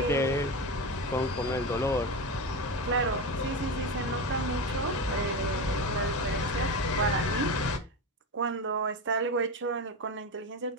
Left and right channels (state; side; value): normal; both; correlation 0.19